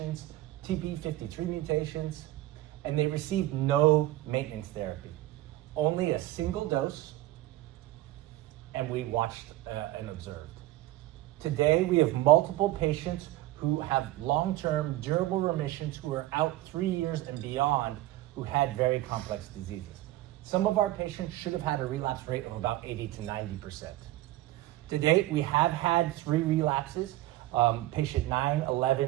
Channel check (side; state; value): left; quieter; 16.2 dB